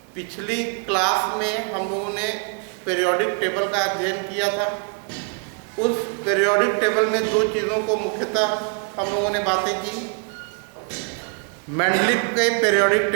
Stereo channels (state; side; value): quieter; left; 38.1 dB